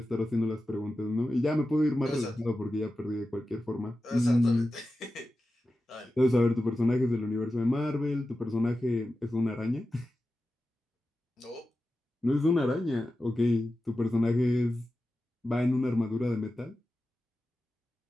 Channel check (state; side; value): normal; both; correlation 0.93